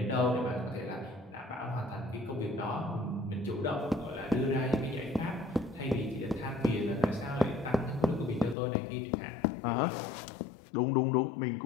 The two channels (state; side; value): drops out; right; at 8.6 s